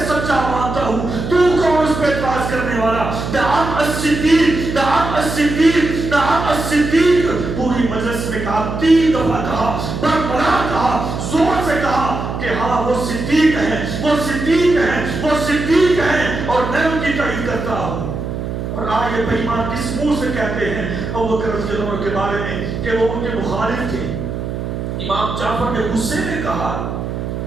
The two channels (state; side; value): noise; right; hum, 5 dB below the sound